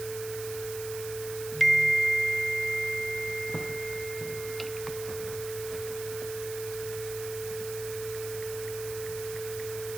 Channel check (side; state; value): right; noise; hiss, 10 dB below the sound